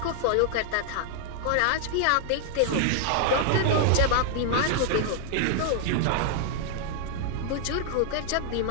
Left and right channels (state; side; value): different; both; correlation 0.00